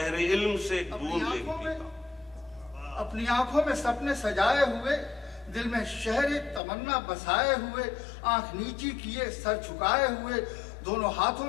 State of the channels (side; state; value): right; drops out; at 6.6 s